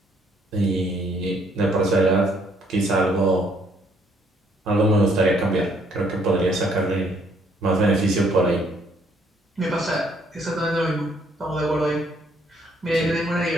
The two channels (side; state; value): both; normal; correlation 0.67